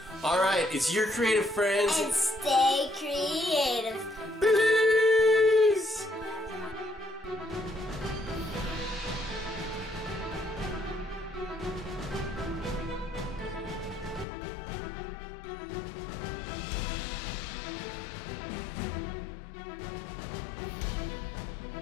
Alright, it's your creative friends. And stay creative.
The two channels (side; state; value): right; drops out; at 14.2 s